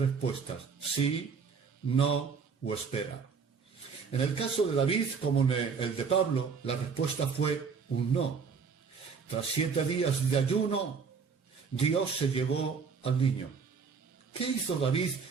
Sí, no o espera. En el caso de David, como en el de Pablo, la respuesta fue un no. Tras 7 días de ayuno, Dios se llevó al niño. ¿Qué hizo David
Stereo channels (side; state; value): left; quieter; 5.7 dB